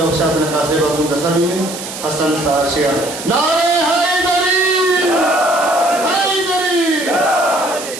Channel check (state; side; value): noise; right; hiss, 10 dB below the sound